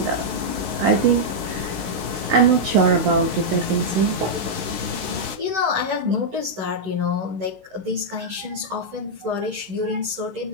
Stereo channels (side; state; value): left; late; 16 ms